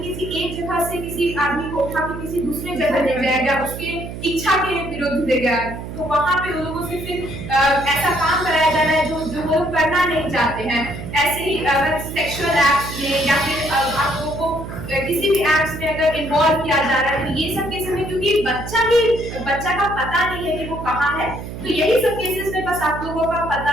एक जगह से किसी आदमी को उठा के किसी दूसरे जगह ले जाया गया, उसके इच्छा के विरुद्ध ले गया, तो वहां पे उन लोगों से फिर ऐसा काम कराया जा रहा है जो वो लोग करना नहीं चाहते हैं। ऐसे ही अगर सेक्सुअल एक्ट्स में या फिर आप लोगों को किसी भी एक्ट्स में अगर इन्वॉल्व किया जा रहा है, तो ये सब केसेस में क्योंकि बच्चा का पता नहीं है कि वो कहाँ है, तो यही सब केसेस में बस आप लोगों का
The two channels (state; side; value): noise; right; hum, 9 dB below the sound